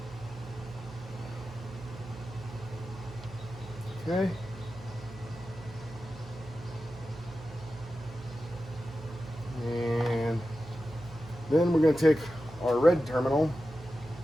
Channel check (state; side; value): noise; right; hum, 16 dB below the sound